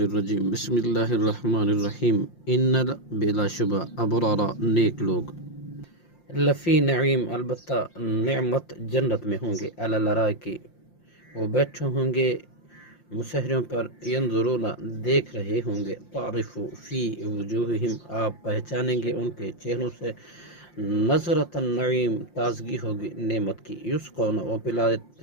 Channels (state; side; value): late; right; 5.7 ms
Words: بسم اللہ الرحمن الرحیم ان بلا شبہ ابرارا نیک لوگ لفی نعیم البتہ نعمت جنت میں ہوں گے علی الارائکی وہ بیٹھے ہوں گے مسہروں پر ینظرون دیکھ رہے ہوں گے تعرف فی وجوہہم آپ پہچانیں گے ان کے چہروں سے نظرۃ النعیم تازگی ہوگی نعمت کی یسقون وہ